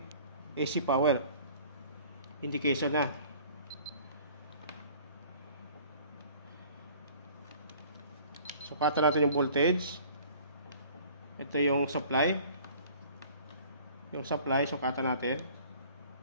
AC power. Indication na. Sukatan natin yung voltage. Ito yung supply. Yung supply, sukatan natin.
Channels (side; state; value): both; inverted; correlation -0.50